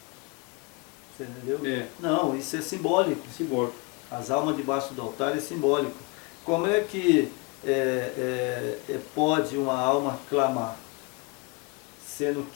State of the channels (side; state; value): right; quieter; 29.1 dB